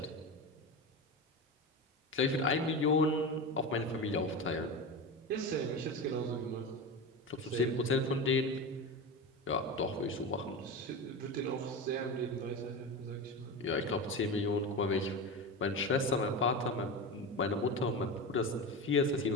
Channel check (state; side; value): normal; both; correlation 0.23